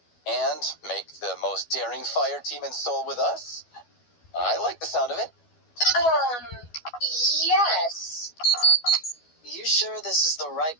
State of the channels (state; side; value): late; right; 12 ms